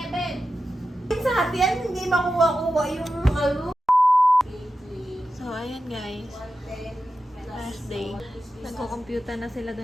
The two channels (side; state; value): both; normal; correlation 0.91